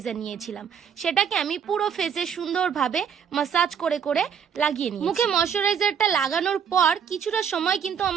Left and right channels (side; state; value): left; quieter; 7.6 dB